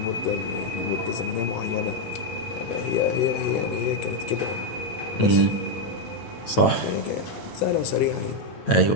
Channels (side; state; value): right; late; 9.1 ms